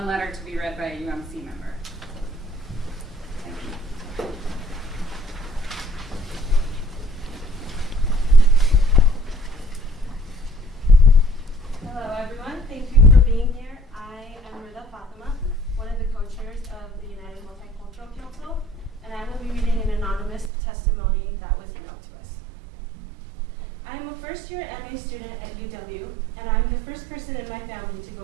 letter to be read by a UMC member. Thank you. Hello, everyone. Thank you for being here. I am Rida Fatima, one of the co-chairs of the United Multicultural Council, and I will be reading an anonymous testimony that was emailed to us. I am a first-year MA student at UW, and I'm the first person in my family to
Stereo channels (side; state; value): left; drops out; at 20.5 s